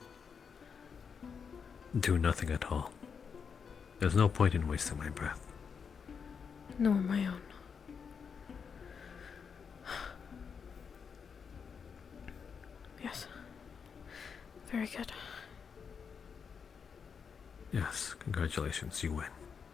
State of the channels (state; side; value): quieter; right; 6.3 dB